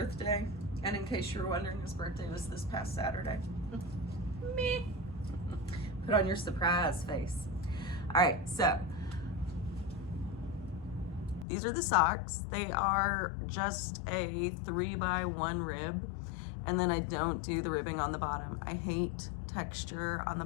and in case you were wondering, his birthday was this past Saturday. Me. Put on your surprise face. All right, so these are the socks. They are just a 3x1 rib, and then I don't do the ribbing on the bottom. I hate texture on the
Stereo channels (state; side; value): drops out; right; at 11.5 s